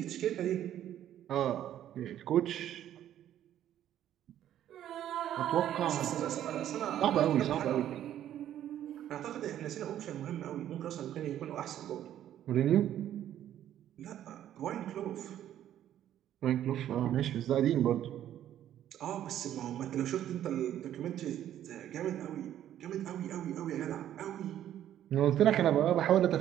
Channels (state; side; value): quieter; left; 11.4 dB